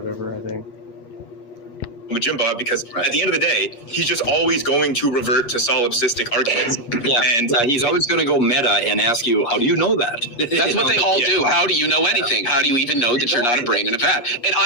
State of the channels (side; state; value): right; late; 8.4 ms